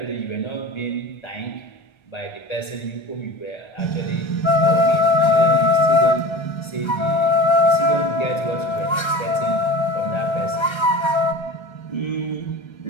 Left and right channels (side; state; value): right; late; 1.3 ms